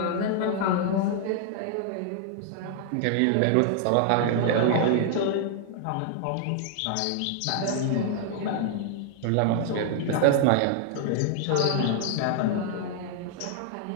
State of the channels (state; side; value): different; both; correlation 0.00